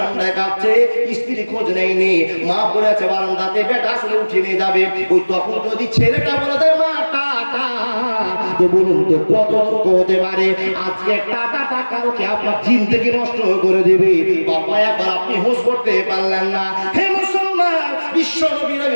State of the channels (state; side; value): inverted; both; correlation -1.00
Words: কাঁপছে, স্ত্রী খোঁজ নেয়নি, মা পড়ে আছে বারান্দাতে, বেটা আসলে উঠে নিয়ে যাবে। ওই তখন যদি ছেলেটা বলে দেয় মা টাটা, তো বলুন তো কত হতে পারে? আজকে টাকাটা কালকে আপনার জিন্দেগি নষ্ট করে দেবে। বাবা একবার আপনি হোশ করতে পারলেন না। হে মুসলমান, বিশ্ব নবী